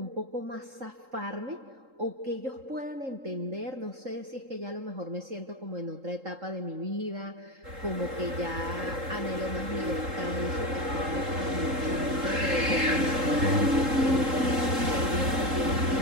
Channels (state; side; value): late; left; 3.8 ms